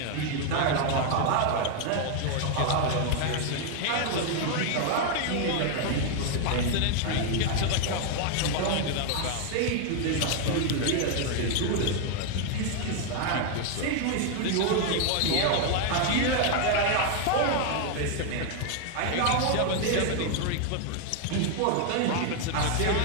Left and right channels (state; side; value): different; both; correlation 0.00